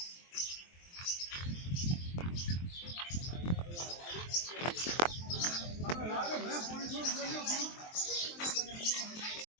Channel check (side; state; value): right; late; 23 ms